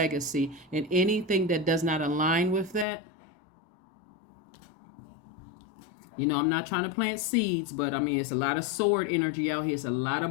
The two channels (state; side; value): drops out; right; at 2.9 s